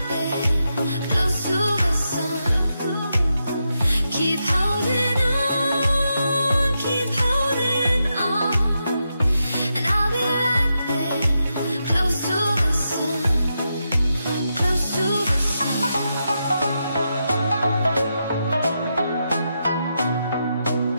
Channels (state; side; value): inverted; both; correlation -0.85